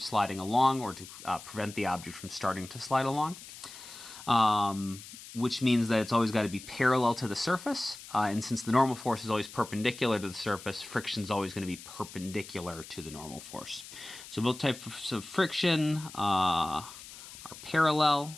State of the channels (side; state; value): left; noise; hiss, 15 dB below the sound